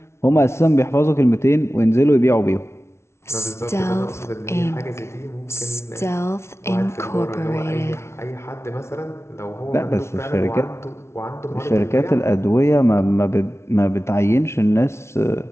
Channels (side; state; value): right; late; 0.13 ms